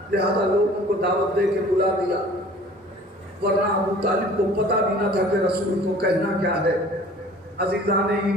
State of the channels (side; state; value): both; normal; correlation 0.48